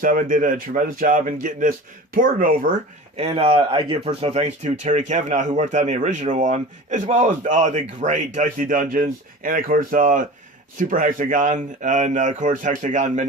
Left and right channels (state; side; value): normal; both; correlation 0.36